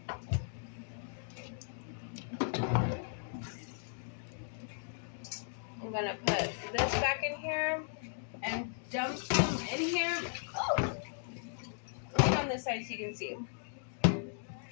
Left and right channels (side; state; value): right; silent; digital silence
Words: I'm going to put this back in here and dump some in here. Oh! Look on this side so you can see.